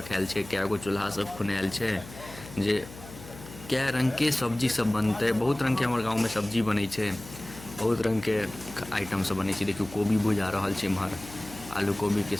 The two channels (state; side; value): noise; left; hum, 16 dB below the sound